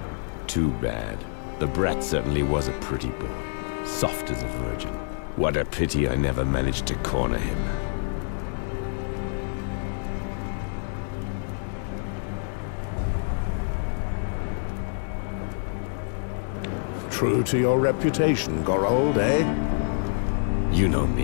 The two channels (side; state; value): right; silent; digital silence